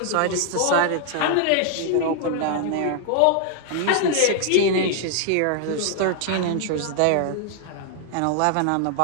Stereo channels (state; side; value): different; both; correlation 0.00